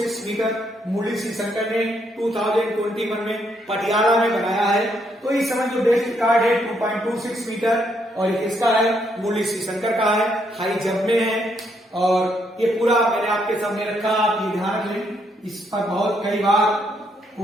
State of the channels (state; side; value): normal; both; correlation 0.74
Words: मीटर मुरली श्रीशंकर ने 2021 में पटियाला में बनाया है। तो इस समय जो बेस्ट रिकॉर्ड है 2.26 मीटर, और ये किसका है? मुरली श्रीशंकर का है, हाई जंप में है। और ये पूरा मैंने आपके सामने रखा, आप ये ध्यान रख लें, इस पर बहुत कई बार